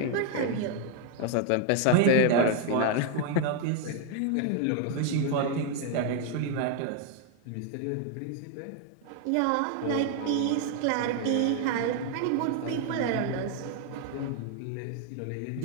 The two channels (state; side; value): different; both; correlation 0.00